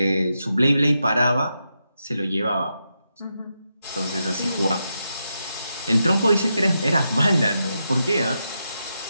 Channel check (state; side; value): inverted; both; correlation -0.86